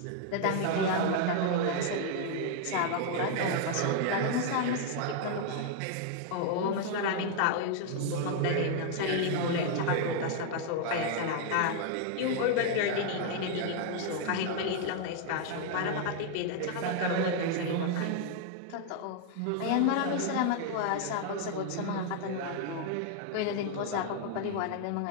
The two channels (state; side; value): different; both; correlation 0.00